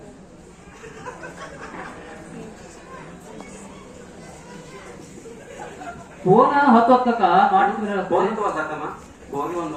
ಫೋನ್ ಹೊತ್ತು ಹೊತ್ತಕ್ಕ ಮಾಡಿದ್ರೆ ಫೋನ್ ತಗೋದಮ್ಮ ಹೋಗಿ ಒಂದ್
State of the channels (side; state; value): both; identical; correlation 1.00